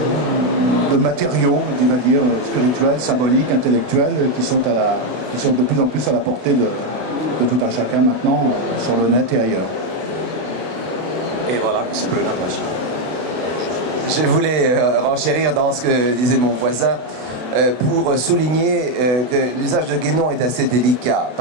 de matériaux, on va dire, spirituels, symboliques, intellectuels, qui sont de plus en plus à la portée de tout un chacun maintenant sur le net et ailleurs. Et voilà, c'est plus une impression. Je voulais renchérir dans ce que disait mon voisin pour souligner que l'usage de Guénon est assez délicat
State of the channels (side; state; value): left; late; 32 ms